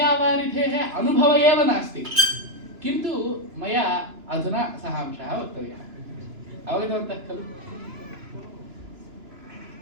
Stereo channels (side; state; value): left; late; 2.9 ms